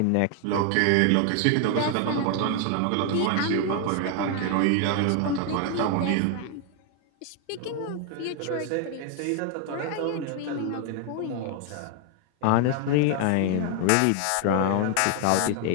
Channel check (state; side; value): different; both; correlation 0.01